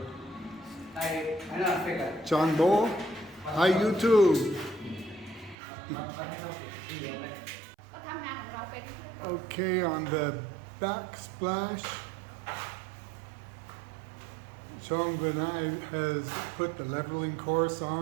Chan Bo, hi YouTube. Okay, on the backsplash, Chong Benai has put the leveling course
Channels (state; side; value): drops out; left; at 5.6 s